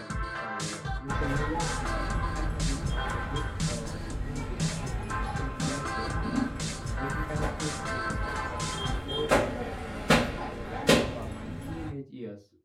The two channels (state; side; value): identical; both; correlation 1.00